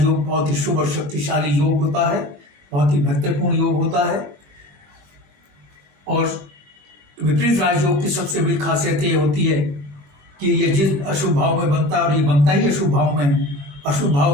बहुत ही शुभ और शक्तिशाली योग होता है, बहुत ही महत्वपूर्ण योग होता है। और विपरीत राजयोग की सबसे बड़ी खासियत ये होती है कि ये जिस अशुभ भाव में बनता है, और ये बनता ही अशुभ भाव में, अशुभ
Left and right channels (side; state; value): left; late; 20 ms